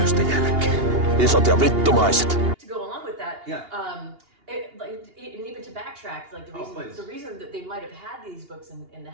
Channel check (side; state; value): left; late; 2.8 ms